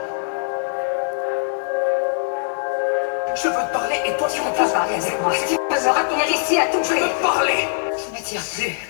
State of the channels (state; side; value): silent; right; digital silence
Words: Je veux te parler et toi tu Tu peux refuses. pas parler avec moi. Tu peux me retenir ici à tout Je prix. veux te parler. Je ne tire plus.